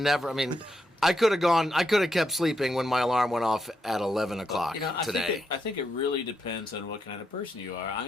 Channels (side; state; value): both; normal; correlation 0.81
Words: I mean, I could have kept sleeping when my alarm went off at 11 o'clock today. I think it really depends on what kind of person you are.